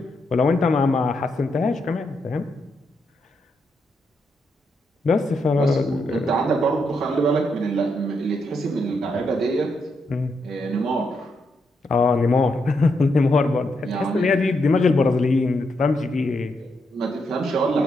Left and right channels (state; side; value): normal; both; correlation 0.80